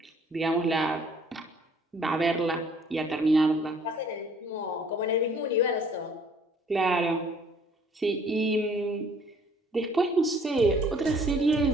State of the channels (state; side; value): normal; both; correlation 0.58